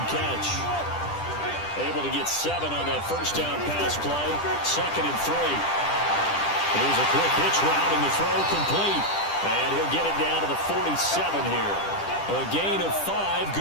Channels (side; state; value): right; late; 10 ms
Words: catch. Able to get 7 on that first down pass play. 2nd and 3. Here's a quick hitch route and the throw complete. And he'll get it down to the 47 here. A gain of 5,